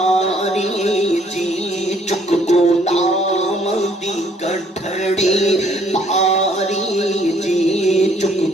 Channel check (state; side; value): normal; both; correlation 0.63